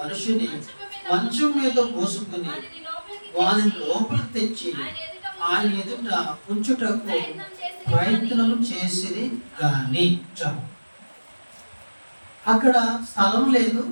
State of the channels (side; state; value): both; inverted; correlation -1.00